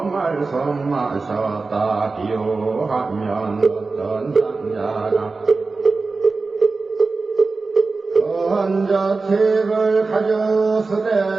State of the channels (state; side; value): quieter; left; 4.0 dB